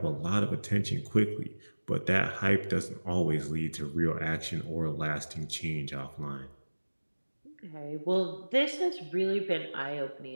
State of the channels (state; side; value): inverted; both; correlation -1.00